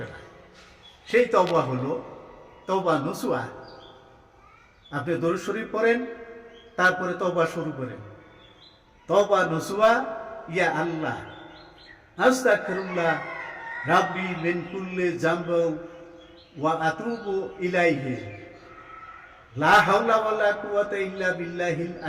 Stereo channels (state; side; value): identical; both; correlation 1.00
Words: না। সেই তওবা হলো তওবা নসুহা। আপনি দরুদ শরীফ পড়েন, তারপরে তওবা শুরু করেন। তওবা নসুহা, ইয়া আল্লাহ আস্তাগফিরুল্লাহ রাব্বি মিন কুল্লি যামবি ওয়া আতুবু ইলাইহি লা হাওলা ওয়ালা কুওয়াতা ইল্লা বিল্লাহিল